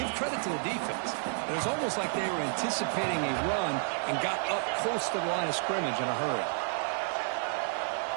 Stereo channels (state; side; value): silent; left; 57 dB below the other